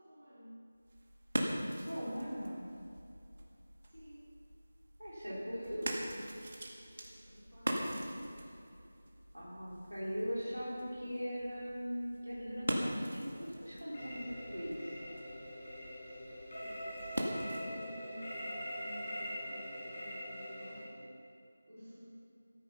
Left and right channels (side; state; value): both; inverted; correlation -0.96